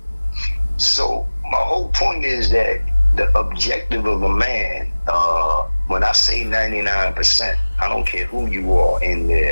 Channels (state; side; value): inverted; both; correlation -1.00